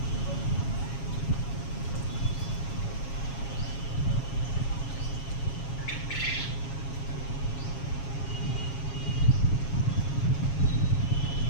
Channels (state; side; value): late; right; 7.3 ms